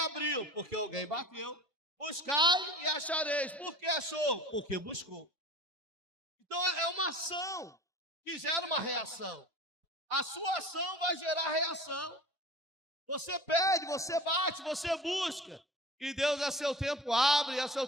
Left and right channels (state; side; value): normal; both; correlation 0.39